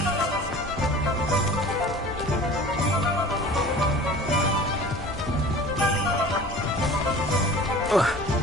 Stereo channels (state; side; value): normal; both; correlation 0.42